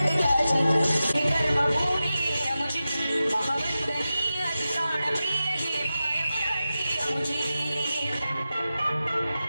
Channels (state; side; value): inverted; both; correlation -0.93